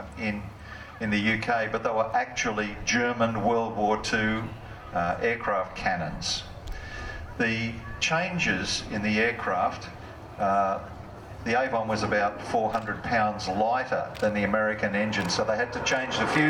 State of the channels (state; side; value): identical; both; correlation 1.00